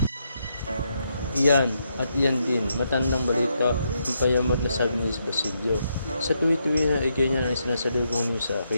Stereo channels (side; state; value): both; inverted; correlation -0.79